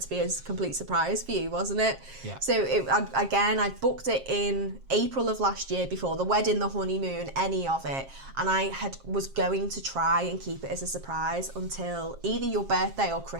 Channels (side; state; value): left; late; 7.5 ms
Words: to be a complete surprise for you, wasn't it? Yeah. So I booked it in April of last year before the wedding, the honeymoon, any of it. And I was going to try and keep it as a surprise until either your birthday or